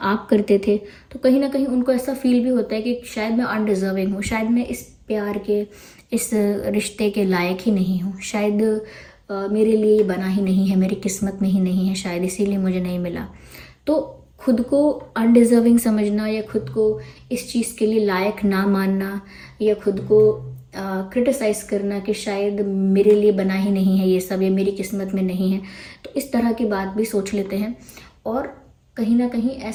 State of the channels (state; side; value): identical; both; correlation 1.00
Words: करते थे। तो कहीं ना कहीं उनको ऐसा फील भी होता है कि शायद मैं अनडिजर्विंग हूँ, शायद मैं इस प्यार के, इस रिश्ते के लायक ही नहीं हूँ, शायद मेरे लिए ये बना ही नहीं है, मेरी किस्मत में ही नहीं है, शायद इसीलिए मुझे नहीं मिला। तो खुद को अनडिजर्विंग समझना, या खुद को इस चीज़ के लिए लायक ना मानना, या खुद को क्रिटिसाइज़ करना कि शायद मेरे लिए बना ही नहीं है ये सब, या मेरी किस्मत में नहीं है, तो इस तरह की बात भी सोच लेते हैं। और कहीं ना कहीं